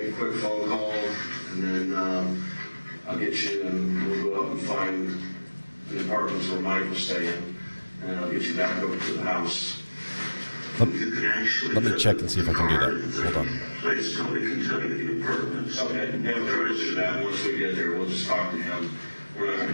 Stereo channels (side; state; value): both; inverted; correlation -1.00